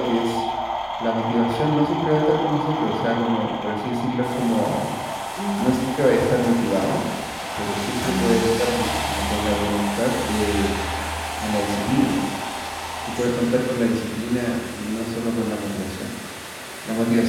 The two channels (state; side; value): identical; both; correlation 1.00